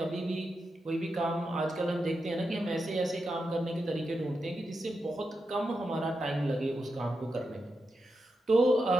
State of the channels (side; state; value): both; normal; correlation 0.87